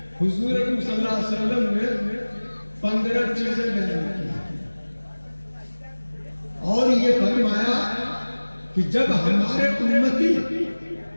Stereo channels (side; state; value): both; inverted; correlation -1.00